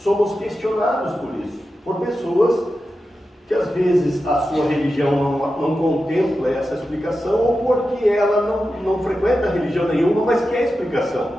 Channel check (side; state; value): both; normal; correlation 0.91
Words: somos questionados por isso, por pessoas que às vezes a sua religião não contempla essa explicação, ou porque ela não frequenta religião nenhuma, mas quer